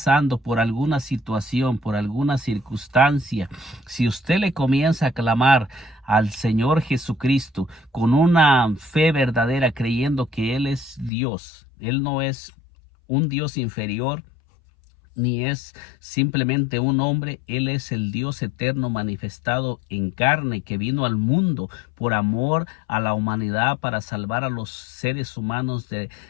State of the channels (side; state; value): right; drops out; at 11.1 s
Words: por alguna situación, por alguna circunstancia, si usted le comienza a clamar al Señor Jesucristo con una fe verdadera, creyendo que Él es Dios, Él no es un Dios inferior, ni es simplemente un hombre. Él es el Dios eterno manifestado en carne, que vino al mundo por amor a la humanidad, para salvar a los seres humanos